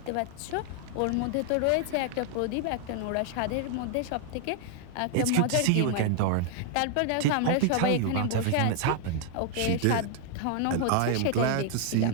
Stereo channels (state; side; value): different; both; correlation 0.00